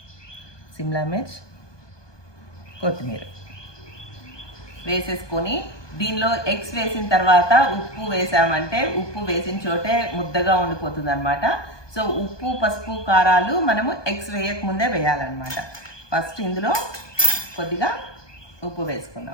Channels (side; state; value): right; late; 1.2 ms